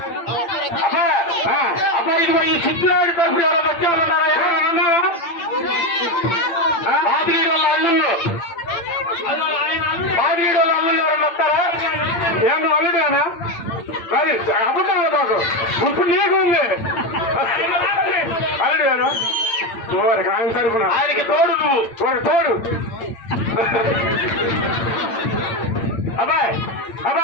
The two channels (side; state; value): right; late; 8.8 ms